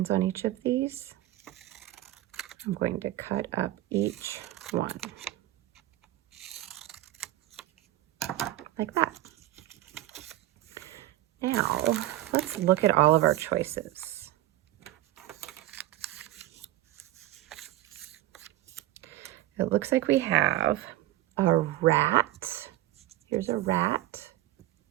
on each of these? I'm going to cut up each one. Like that. Now, let's look at all of our choices. It looks like we have a rat. Here's a rat.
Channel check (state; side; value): quieter; left; 14.9 dB